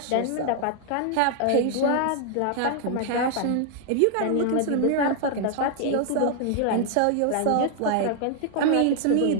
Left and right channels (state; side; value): different; both; correlation 0.00